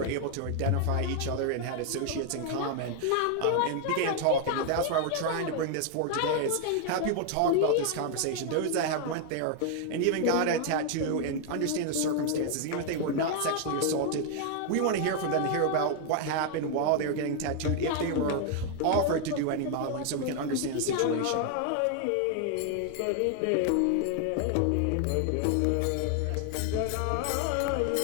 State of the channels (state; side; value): different; both; correlation 0.00